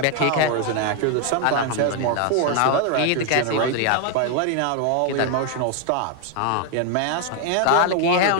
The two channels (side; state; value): both; different; correlation 0.00